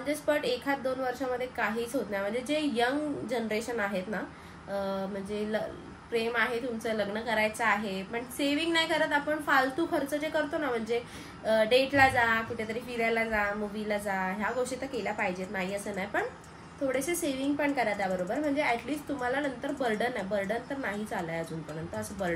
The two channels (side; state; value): both; identical; correlation 1.00